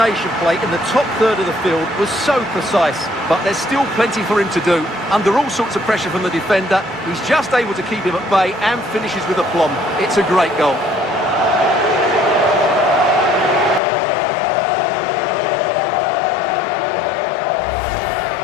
play in the top third of the field was so precise, but there's still plenty for him to do. Under all sorts of pressure from the defender, he's just able to keep him at bay and finishes with aplomb. It's a great goal.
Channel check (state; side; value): drops out; right; at 13.8 s